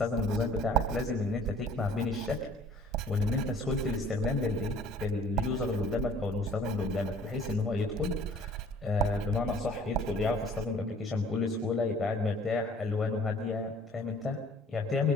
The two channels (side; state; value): both; normal; correlation 0.53